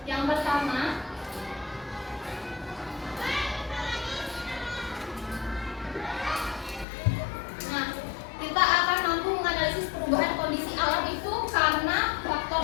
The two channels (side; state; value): right; drops out; at 6.9 s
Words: Yang pertama, kita akan mampu menganalisis perubahan kondisi alam itu karena